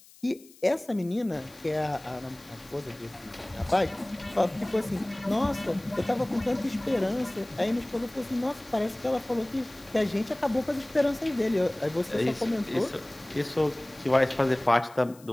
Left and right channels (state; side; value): noise; left; hiss, 24 dB below the sound